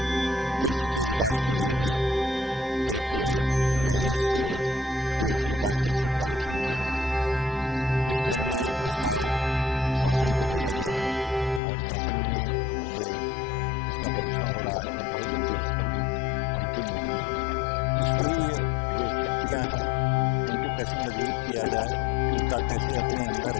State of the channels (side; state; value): right; drops out; at 11.6 s